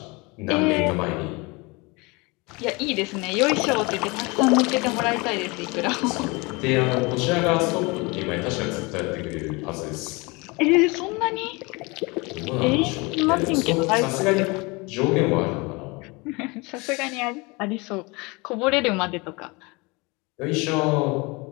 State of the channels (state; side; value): quieter; right; 26.3 dB